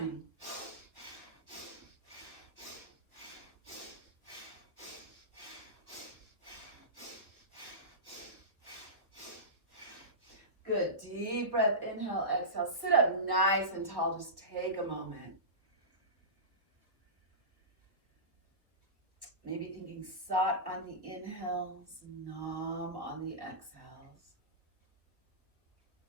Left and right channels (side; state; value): left; late; 1.2 ms